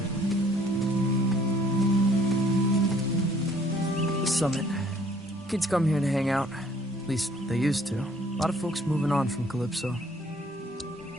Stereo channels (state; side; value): normal; both; correlation 0.60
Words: Summit. Kids come here to hang out. At least they used to. A lot of folks moving on from Calypso.